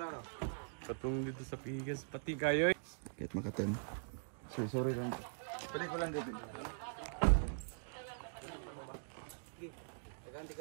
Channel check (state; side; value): silent; left; digital silence